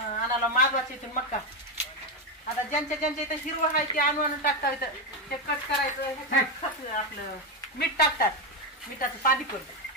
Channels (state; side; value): normal; both; correlation 0.09